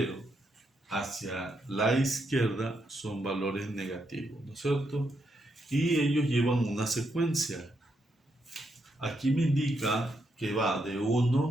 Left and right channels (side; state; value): both; normal; correlation 0.80